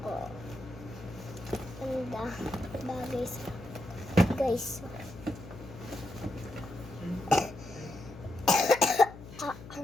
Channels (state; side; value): noise; left; hum, 15 dB below the sound